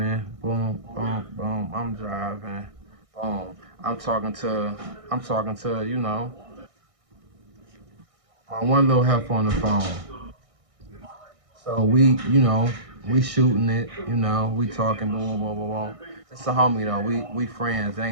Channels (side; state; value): left; late; 1.6 ms